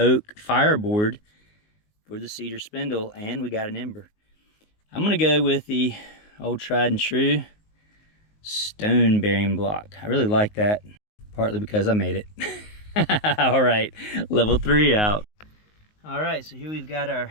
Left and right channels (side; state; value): right; late; 19 ms